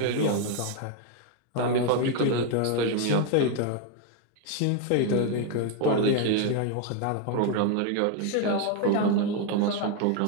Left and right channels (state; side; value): different; both; correlation 0.01